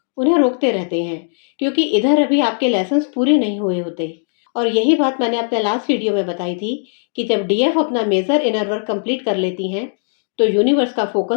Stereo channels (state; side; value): silent; right; digital silence